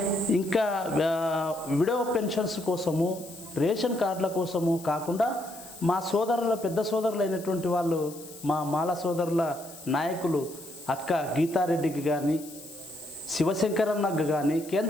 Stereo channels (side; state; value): left; noise; hiss, 17 dB below the sound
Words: ఇంకా విడో పెన్షన్స్ కోసము, రేషన్ కార్డుల కోసము కాకుండా మా సోదరుల పెద్ద సోదరులైనటువంటి వాళ్ళు, మా మాల సోదరుల నాయకులు అక్క గీతారెడ్డికి కానీ, శివశంకరన్నకు కానీ